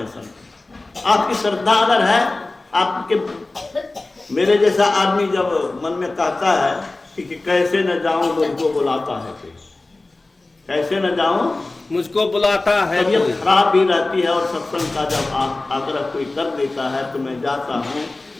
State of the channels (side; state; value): right; quieter; 3.1 dB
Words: संत। आपकी श्रद्धा अगर है, आपके मेरे जैसा आदमी जब मन में कहता है कि कैसे न जाऊं मुझको बुलाता है, कैसे न जाऊं मुझको बुलाता है, तबीयत खराब भी रहती है और सत्संग का जब आग्रह कोई कर देता है तो मैं जाता हूँ